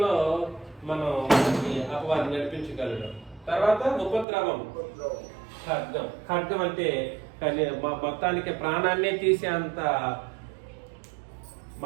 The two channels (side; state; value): left; drops out; at 4.2 s